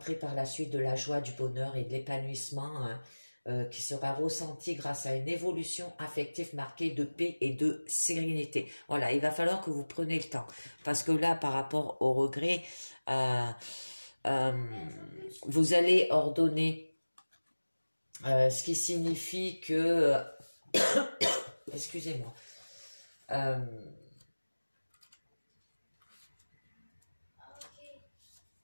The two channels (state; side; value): inverted; both; correlation -1.00